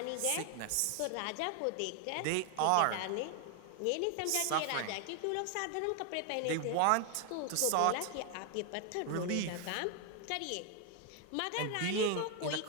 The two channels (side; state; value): both; different; correlation 0.01